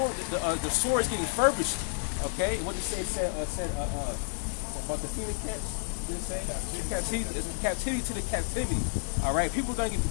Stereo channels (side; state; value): right; silent; digital silence